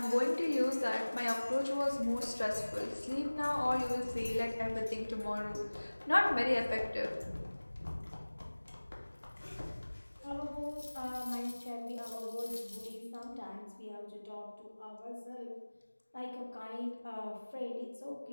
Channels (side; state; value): both; inverted; correlation -1.00